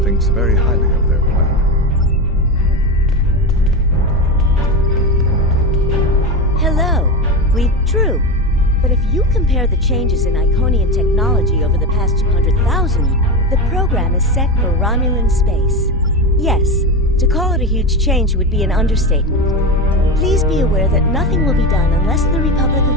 thinks very highly of their plan. Hello. True. But if you compare the changes in Iconian technology over the past 200,000 years, the program is set for Romulan space. Yes, to call it a huge change would be an understatement. Please be aware that nothing will be done unless the Republic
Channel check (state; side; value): normal; both; correlation 0.19